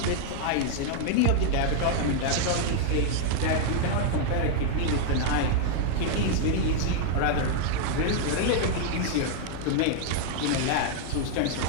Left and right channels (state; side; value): different; both; correlation 0.00